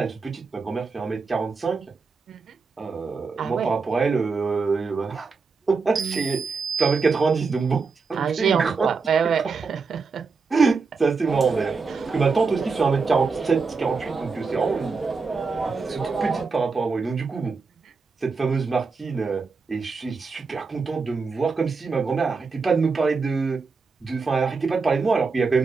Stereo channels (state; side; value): quieter; left; 4.7 dB